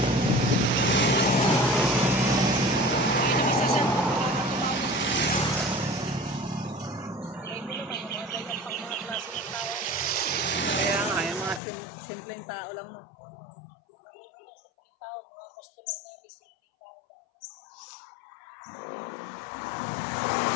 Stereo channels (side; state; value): right; drops out; at 11.6 s